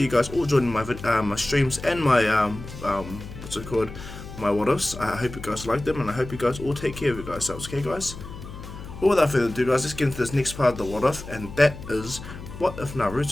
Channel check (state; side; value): noise; left; hum, 13 dB below the sound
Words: you guys all joining my my streams and my what's it called, my what ifs. I hope you guys like them, and I hope you guys all take care of yourselves. Okay, guys. Well, without further ado, guys, let's get into this next part of the what if, and that is, what if